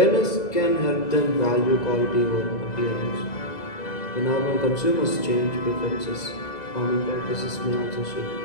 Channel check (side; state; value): right; late; 2.0 ms